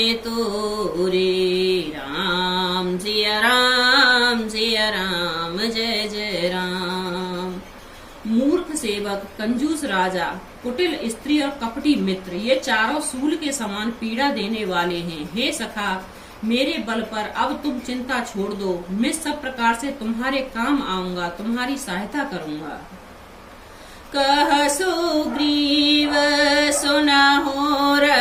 तोरे। राम सिया राम जय जय राम। मूर्ख सेवक, कंजूस राजा, कुटिल स्त्री और कपटी मित्र, ये चारों सूल के समान पीड़ा देने वाले हैं। हे सखा, मेरे बल पर अब तुम चिंता छोड़ दो, मैं सब प्रकार से तुम्हारे काम आऊंगा, तुम्हारी सहायता करूंगा। कह सुग्रीव सुनहु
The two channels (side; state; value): both; identical; correlation 1.00